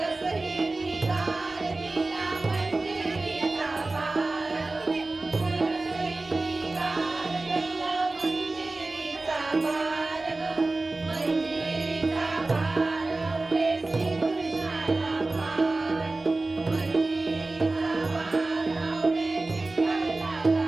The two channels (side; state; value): left; quieter; 3.2 dB